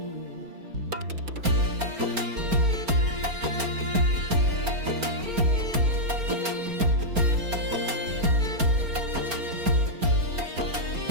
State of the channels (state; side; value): late; left; 4.4 ms